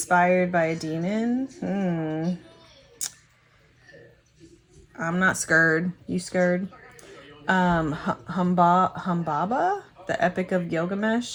by a demon. I'm not scared. You scared? Humbaba, the Epic of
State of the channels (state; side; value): identical; both; correlation 1.00